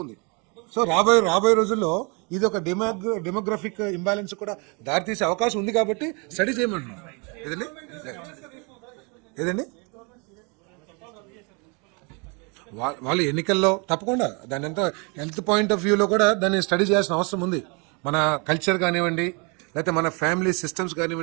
ఉంది. సో రాబోయే రోజుల్లో ఇది ఒక డెమోగ్రఫిక్ ఇంబ్యాలెన్స్ కూడా దారితీసే అవకాశం ఉంది కాబట్టి స్టడీ చేయమంటున్నాం. ఏదండి వాళ్ళు ఎన్నికల్లో తప్పకుండా దాని అంతా హెల్త్ పాయింట్ ఆఫ్ వ్యూలో కూడా దాన్ని స్టడీ చేయాల్సిన అవసరం ఉంది. మన కల్చర్ కానివ్వండి, లేకపోతే మన ఫ్యామిలీ సిస్టమ్స్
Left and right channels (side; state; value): left; quieter; 32.5 dB